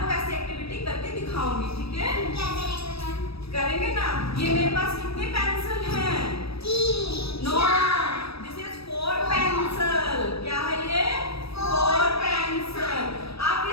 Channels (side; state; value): right; late; 0.77 ms